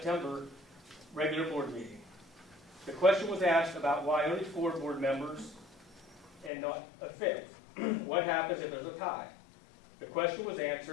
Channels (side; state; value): right; drops out; at 6.5 s